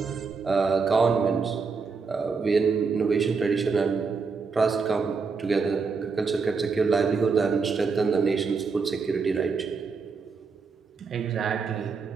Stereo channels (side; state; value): left; quieter; 5.0 dB